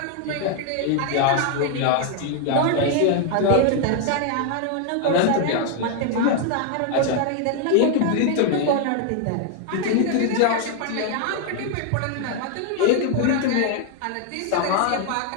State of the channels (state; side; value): different; both; correlation 0.01